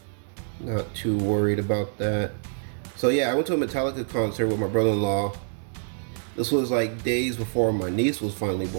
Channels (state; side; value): silent; left; digital silence